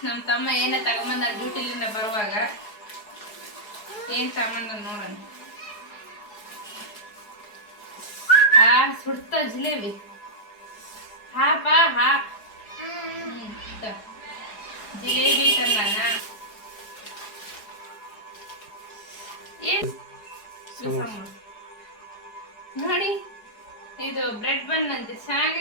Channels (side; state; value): right; late; 4.7 ms